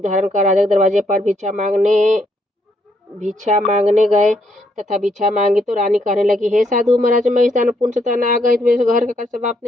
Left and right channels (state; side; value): normal; both; correlation 0.73